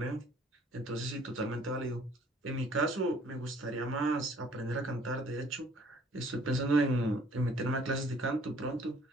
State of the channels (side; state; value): both; normal; correlation 0.57